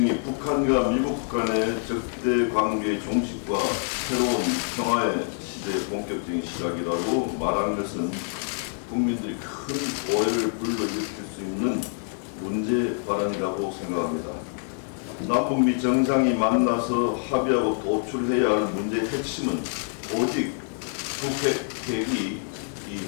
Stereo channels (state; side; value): silent; right; 61 dB below the other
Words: 북한과 미국 간의 적대 관계의 종식과 새로운 평화의 시대의 본격적인 시작이라고 말한 것은 국민들이 큰 오해를 불러일으킬 수 있는 문제 발언이라고 생각합니다. 남북 미 정상이 만나서 합의하고 도출해야 할 문제의 핵심은 오직 북핵 핵이 이